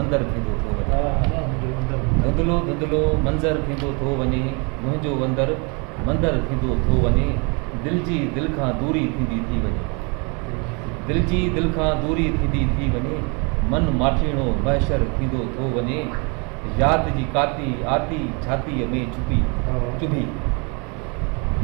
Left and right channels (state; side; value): quieter; left; 32.6 dB